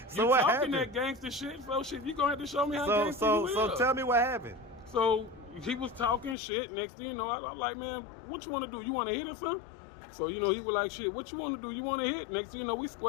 So you what talking happened? that gangster shit, so shit, you gonna have to show me how gangster you is. So tell me what happened. So he was talking shit. Next thing you know, I'm like, man, what you want to do? You want to hit or something? So, you know, he was like, shit, what you want to do? You want to hit? Next thing you know, we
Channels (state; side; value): drops out; right; at 6.4 s